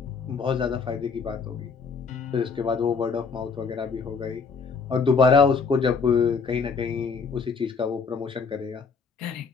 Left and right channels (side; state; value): right; quieter; 5.2 dB